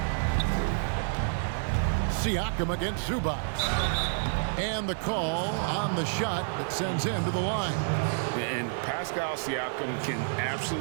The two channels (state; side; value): silent; left; 59 dB below the other